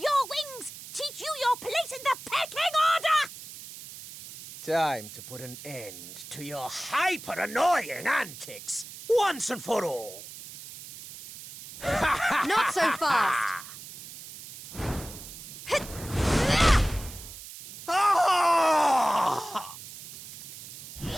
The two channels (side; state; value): right; noise; hiss, 14 dB below the sound